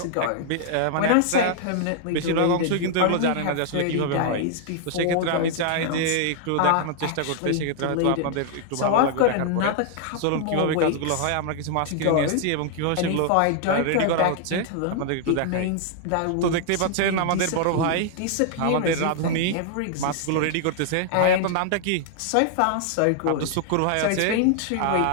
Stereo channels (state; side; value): different; both; correlation 0.00